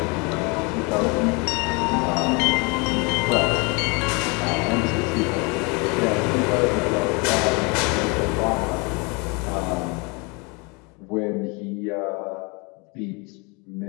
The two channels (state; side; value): quieter; right; 30.1 dB